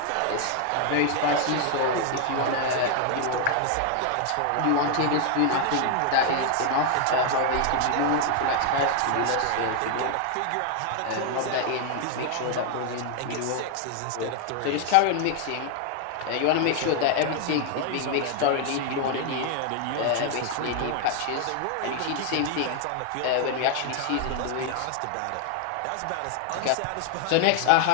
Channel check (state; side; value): different; both; correlation 0.00